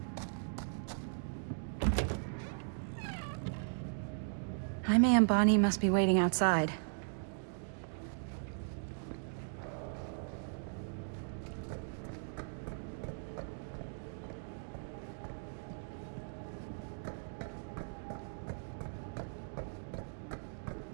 Jaime and Bonnie must be waiting outside.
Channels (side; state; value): left; silent; digital silence